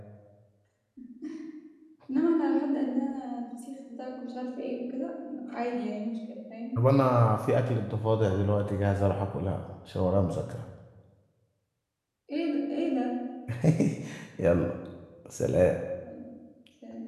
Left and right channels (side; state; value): both; identical; correlation 1.00